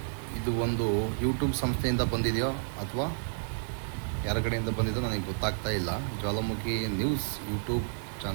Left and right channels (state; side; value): silent; left; 55 dB below the other